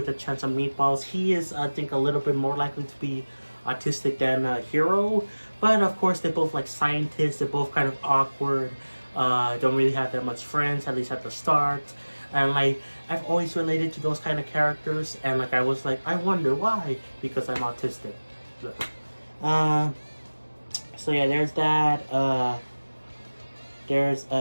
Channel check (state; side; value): inverted; both; correlation -1.00